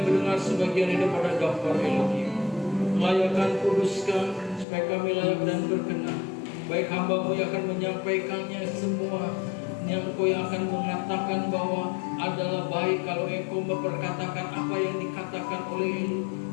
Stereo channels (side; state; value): right; drops out; at 4.7 s